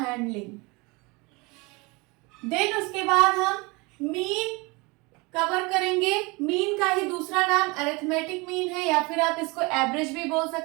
देन उसके बाद हम मीन कवर करेंगे। मीन का ही दूसरा नाम अरिथमेटिक मीन है, या फिर आप इसको एवरेज भी बोल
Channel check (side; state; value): left; quieter; 26.3 dB